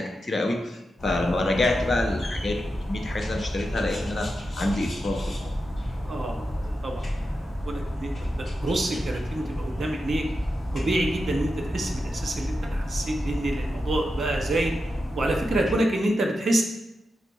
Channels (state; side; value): normal; both; correlation 0.89